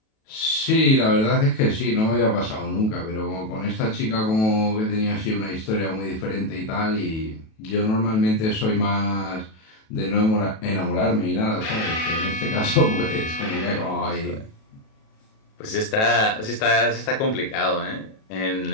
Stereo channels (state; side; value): late; right; 37 ms